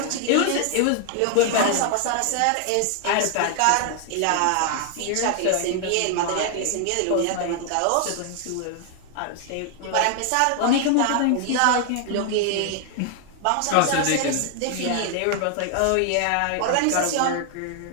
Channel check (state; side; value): different; both; correlation 0.00